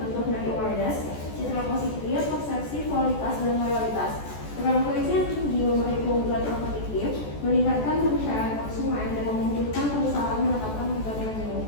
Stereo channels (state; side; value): late; right; 14 ms